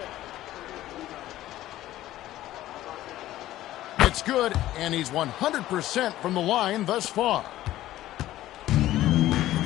It's good, and he's 100% from the line thus far. The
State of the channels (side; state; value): right; quieter; 14.6 dB